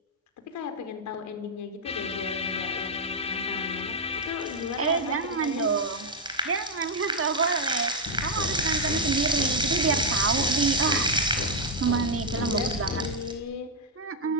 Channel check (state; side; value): normal; both; correlation -0.01